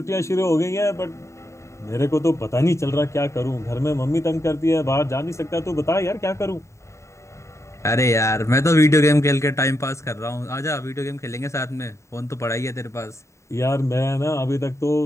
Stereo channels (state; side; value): late; right; 0.14 ms